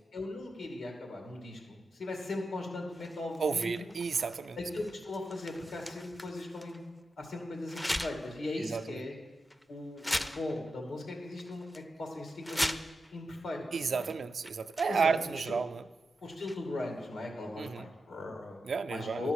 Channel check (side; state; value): both; normal; correlation 0.89